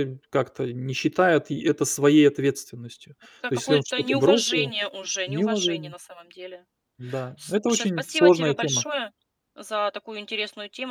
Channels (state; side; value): identical; both; correlation 1.00